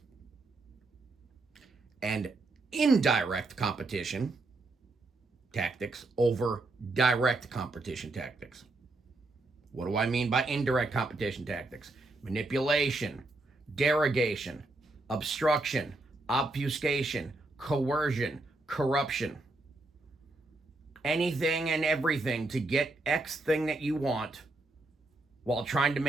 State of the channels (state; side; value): quieter; left; 3.0 dB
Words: And indirect competition tactics over direct competition tactics. What do I mean by indirect competition tactics? Manipulation, derogation, obstruction, obfuscation, coercion, corruption. Anything and everything to get X thing that you want while trying to